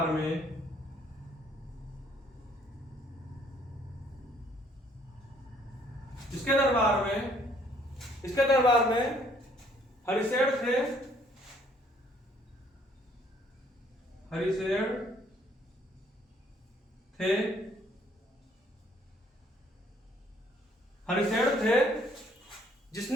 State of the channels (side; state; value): both; normal; correlation 0.63